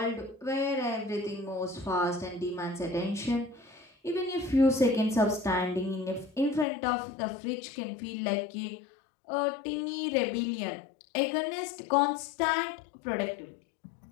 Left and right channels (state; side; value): drops out; right; at 6.7 s